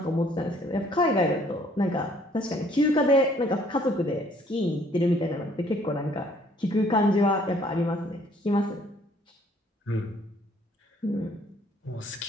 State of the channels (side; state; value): both; normal; correlation 0.61